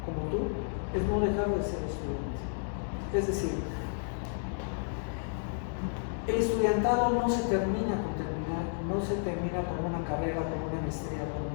como tú, es no dejar de ser estudiante. Es decir, el estudiantado no se termina con una carrera, con una maestría, con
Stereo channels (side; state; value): right; silent; digital silence